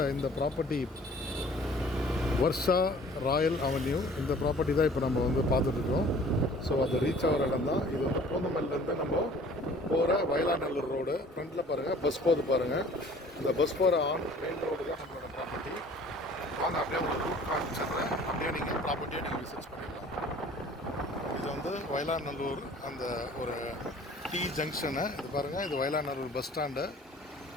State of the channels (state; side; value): normal; both; correlation 0.50